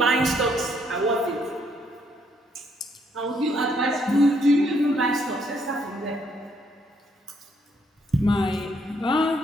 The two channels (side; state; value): both; normal; correlation 0.71